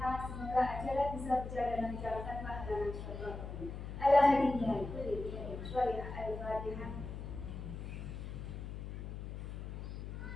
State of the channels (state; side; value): noise; left; hum, 7 dB below the sound